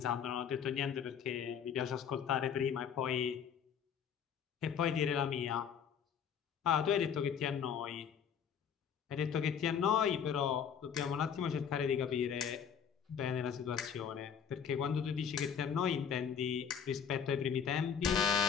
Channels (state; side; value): quieter; right; 7.7 dB